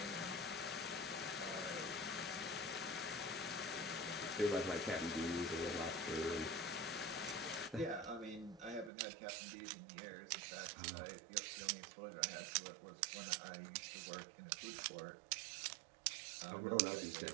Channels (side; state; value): left; drops out; at 8.9 s